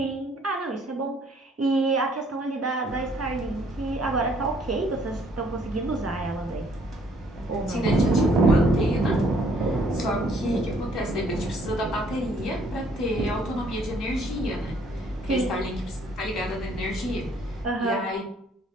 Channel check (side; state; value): both; normal; correlation 0.64